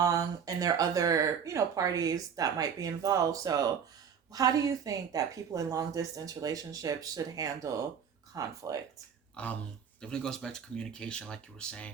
and there are other parties that might be involved. So how do you think that people in long distance relationships should handle conflict? Definitely goes back to communication, like you were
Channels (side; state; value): left; quieter; 7.3 dB